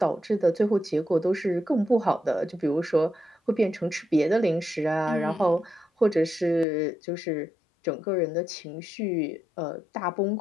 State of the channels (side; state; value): right; drops out; at 6.7 s